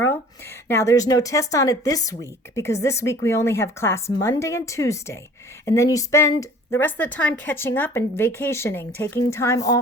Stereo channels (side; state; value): both; normal; correlation 0.48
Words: Now, there's no test on it this week because this week we only have class Monday and Tuesday, and then you spend the rest of the time catching up and vacationing, taking time